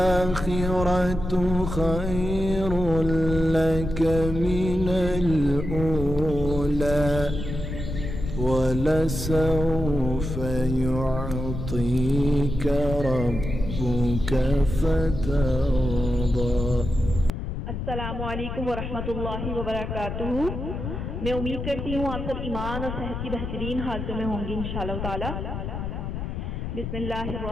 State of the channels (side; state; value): left; noise; rumble, 5 dB below the sound